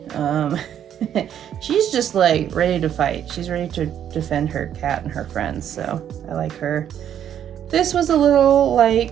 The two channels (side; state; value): left; quieter; 9.8 dB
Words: She's just like ready to fight. She's ready to defend her cat and her friends, so I like her. This was a little